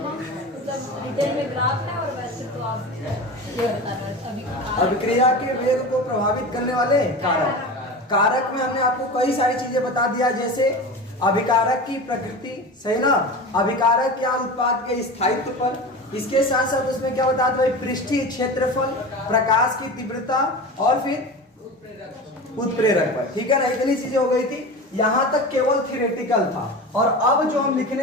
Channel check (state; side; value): normal; both; correlation 0.30